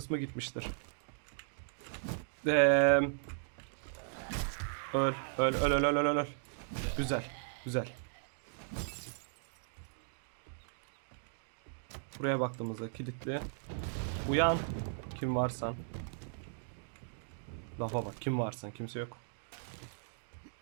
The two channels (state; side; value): silent; left; digital silence